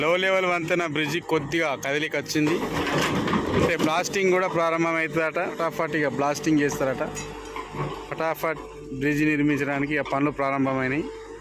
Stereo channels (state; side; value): identical; both; correlation 1.00